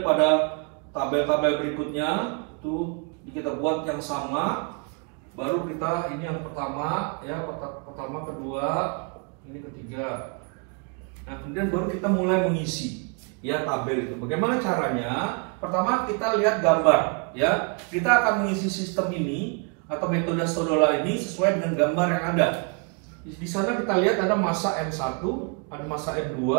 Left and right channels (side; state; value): left; quieter; 33.7 dB